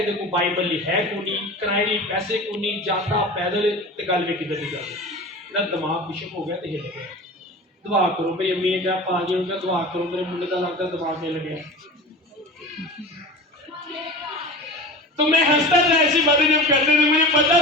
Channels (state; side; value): normal; both; correlation 0.34